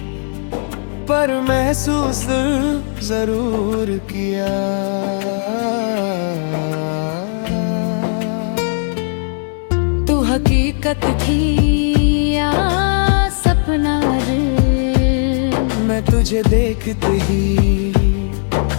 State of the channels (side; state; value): right; silent; digital silence